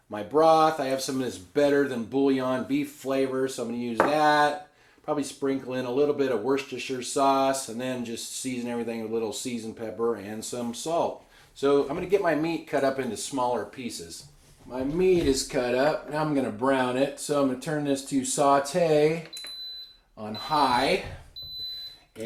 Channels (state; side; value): identical; both; correlation 1.00